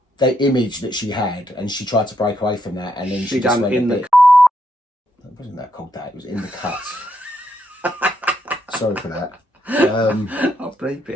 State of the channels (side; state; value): both; normal; correlation 0.78